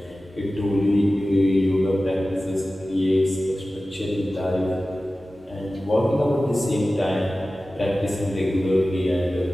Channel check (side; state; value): both; normal; correlation 0.96